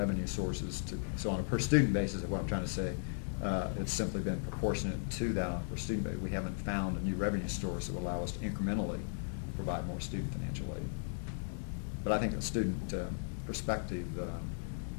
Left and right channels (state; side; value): silent; right; digital silence